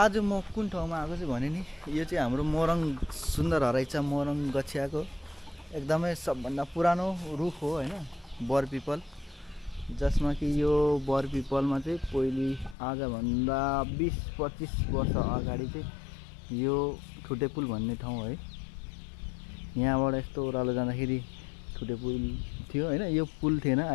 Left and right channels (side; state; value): right; drops out; at 12.8 s